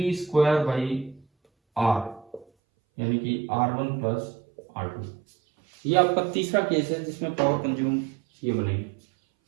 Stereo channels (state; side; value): drops out; left; at 2.5 s